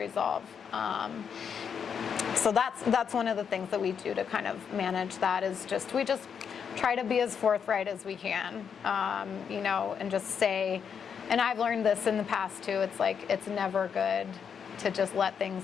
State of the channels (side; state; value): right; quieter; 7.1 dB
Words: So that's one of the things that we do to kind of manage that, is we try to be as forthright as we can, and just say, and I've learned this in the past too, it's like, it's never good to just let